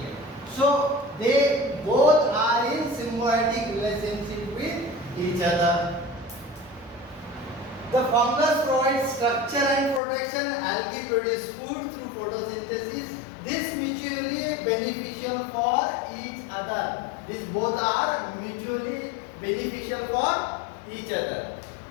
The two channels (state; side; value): drops out; right; at 10.0 s